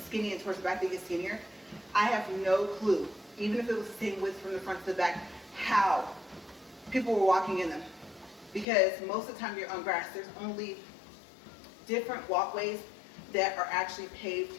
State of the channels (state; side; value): drops out; right; at 8.7 s